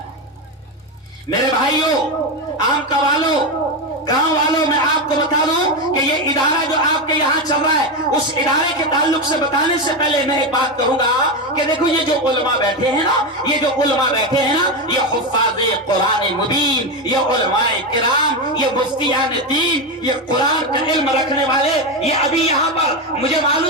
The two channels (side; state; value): both; normal; correlation 0.12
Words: میرے بھائیوں، عام کا والوں، گاؤں والوں، میں آپ کو بتا دوں کہ یہ ادارہ جو آپ کے یہاں چل رہا ہے، اس ادارے کے تعلق سے بتانے سے پہلے میں ایک بات کہوں گا کہ دیکھو یہ جو علماء بیٹھے ہیں نا، یہ جو علماء بیٹھے ہیں نا، یہ حفاظ قرآن مبین، یہ علماء کرام، یہ مفتیان دین، یہ قرآن کا علم رکھنے والے، یہ ابھی یہاں پر مجھے